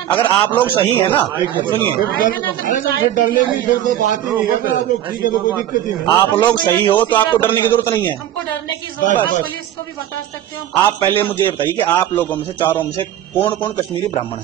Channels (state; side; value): quieter; left; 11.8 dB